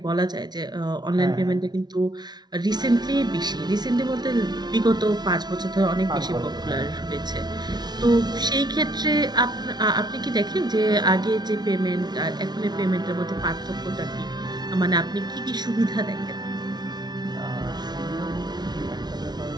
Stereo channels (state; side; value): late; left; 0.20 ms